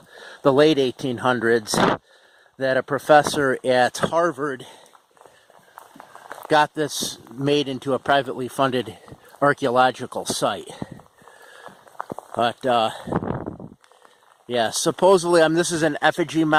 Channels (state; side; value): identical; both; correlation 1.00